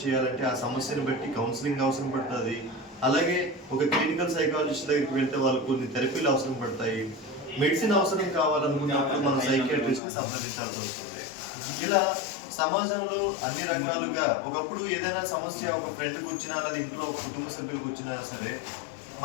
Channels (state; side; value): drops out; right; at 10.0 s